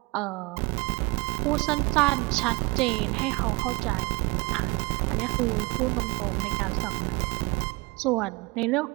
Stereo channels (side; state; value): left; quieter; 25.1 dB